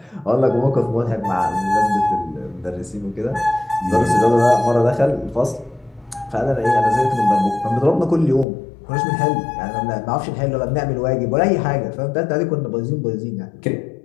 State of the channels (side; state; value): right; drops out; at 8.5 s